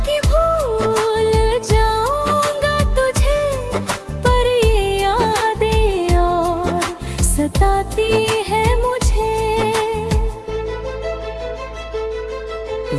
कि भूल जाऊंगा तुझे, पर ये यादें और सताती है मुझे।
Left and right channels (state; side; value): identical; both; correlation 1.00